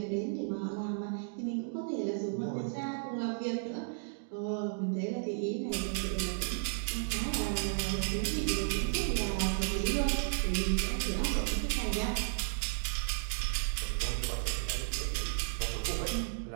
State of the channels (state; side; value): silent; left; digital silence